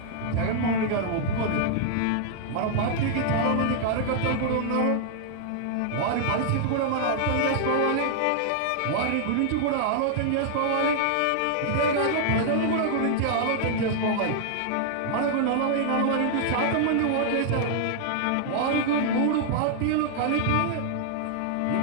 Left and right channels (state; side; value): different; both; correlation -0.01